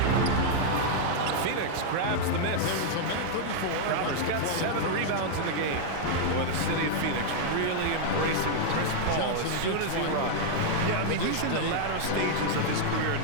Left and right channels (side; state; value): both; different; correlation -0.01